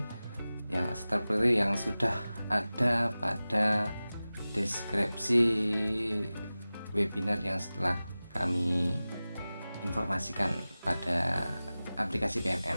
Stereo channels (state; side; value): inverted; both; correlation -0.97